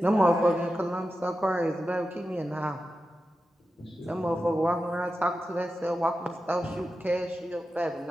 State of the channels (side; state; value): both; normal; correlation 0.92